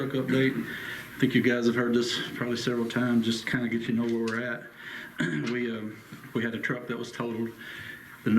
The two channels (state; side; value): identical; both; correlation 1.00